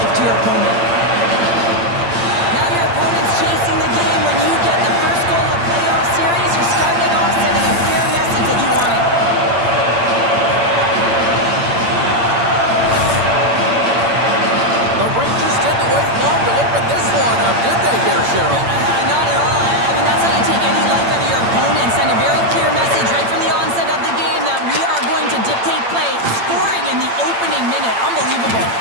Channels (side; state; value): left; late; 8.7 ms